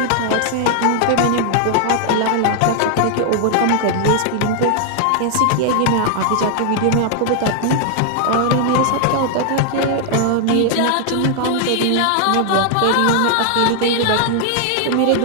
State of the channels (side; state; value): both; different; correlation 0.00